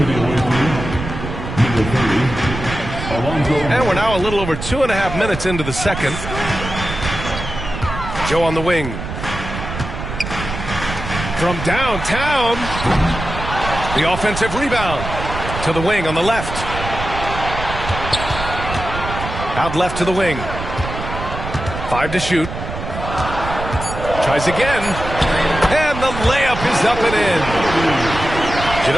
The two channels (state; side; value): noise; right; rumble, 7 dB below the sound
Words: And we're now a little over 2.5 minutes into the second. Joe on the wing. From downtown, the offensive rebound to the wing on the left. Out left to the wing. 5 to shoot. Tries again. And the layup is up and in.